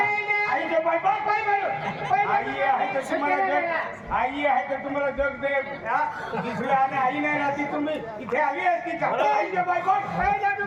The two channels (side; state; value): both; identical; correlation 1.00